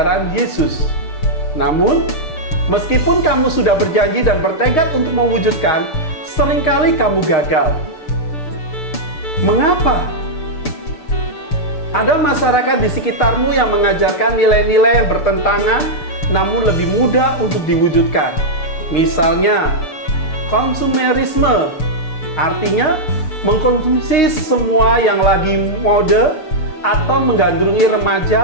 Yesus. Namun, Meskipun kamu sudah berjanji dan bertekad untuk mewujudkan, seringkali kamu gagal. Mengapa? Ada masyarakat di sekitarmu yang mengajarkan nilai-nilai yang bertentangan, namun lebih mudah untuk diwujudkan. Misalnya, konsumerisme, artinya mengkonsumsi semua yang lagi mode atau menggandrungi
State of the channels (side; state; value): right; late; 6.9 ms